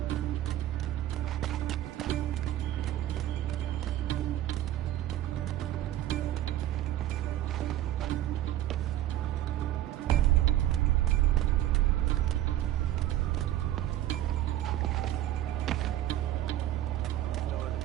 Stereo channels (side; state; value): left; quieter; 13.1 dB